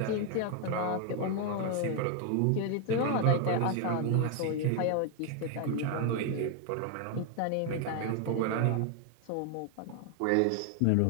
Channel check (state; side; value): different; both; correlation 0.01